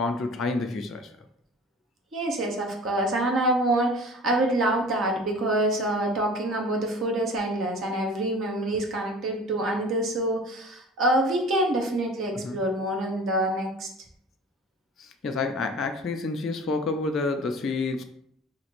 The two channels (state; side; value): normal; both; correlation 0.42